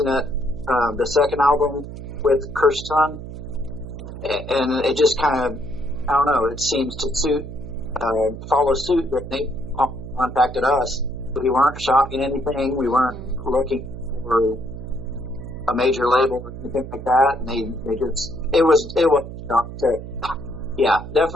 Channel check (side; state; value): right; noise; hum, 11 dB below the sound